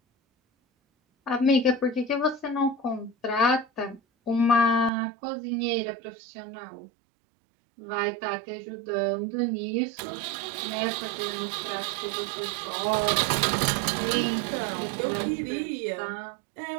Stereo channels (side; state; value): left; drops out; at 4.9 s